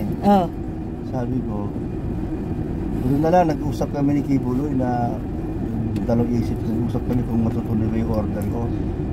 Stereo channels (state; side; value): identical; both; correlation 1.00